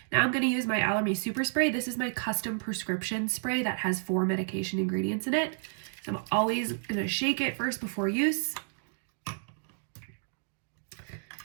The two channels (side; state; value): left; silent; digital silence